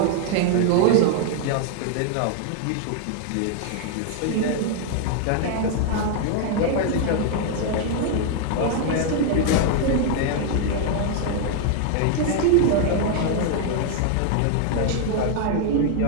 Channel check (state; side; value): different; both; correlation 0.00